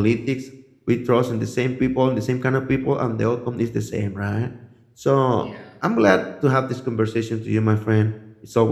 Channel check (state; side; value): identical; both; correlation 1.00